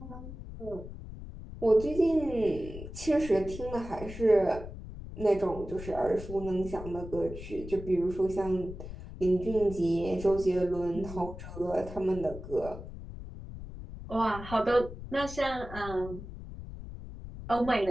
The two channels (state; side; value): noise; left; rumble, 11 dB below the sound